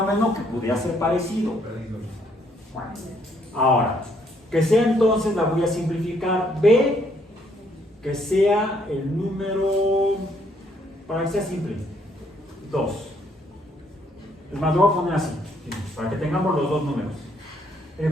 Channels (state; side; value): normal; both; correlation 0.69